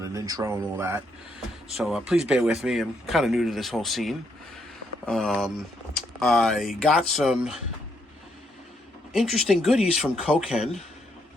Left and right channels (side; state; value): both; normal; correlation 0.75